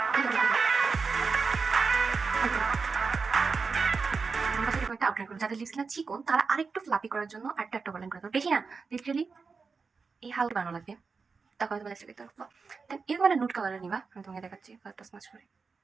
একটা আউটলাইন করবো, যাদের লিপস না চিকন তারা আরেকটু ফ্লাপি করার জন্য আরেকটা একটা আউটলাইন করে দেবো। বেশি না, লিটারালি এই হালকা বানানো লাগবে, তারপরে তোমার দেখতে পারবো। দেন এরকম একটা নুট কালারের নিবা, আমি তোমাকে দেখাচ্ছি কালারটা স্মাচ করে।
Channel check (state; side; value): quieter; left; 4.8 dB